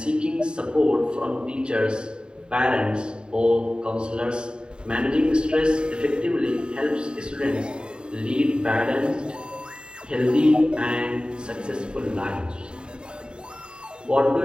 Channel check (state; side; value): late; left; 0.050 ms